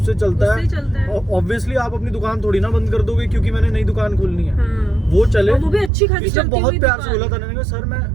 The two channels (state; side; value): drops out; left; at 5.9 s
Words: चलता है, ऑब्वियसली आप अपनी दुकान थोड़ी ना बंद कर दोगे क्योंकि मैंने नई दुकान खोलनी है। वो चले, और वो भी अच्छी खासी इसने चलती बहुत हुई प्यार से दुकान। बोला था, मैंने कहा सर